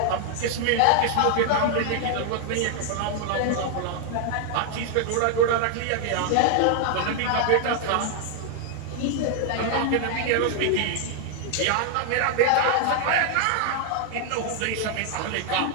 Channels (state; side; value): different; both; correlation 0.00